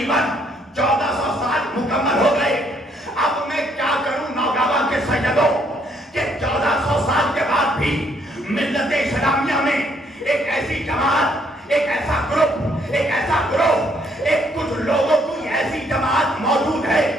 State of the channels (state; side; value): normal; both; correlation 0.68